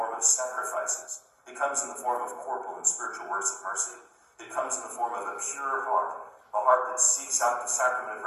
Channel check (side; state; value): both; identical; correlation 1.00